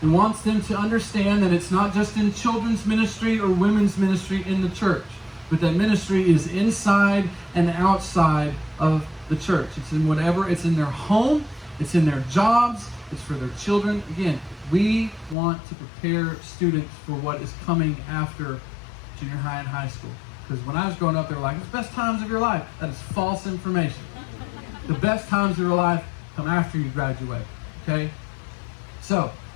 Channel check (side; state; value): right; drops out; at 15.4 s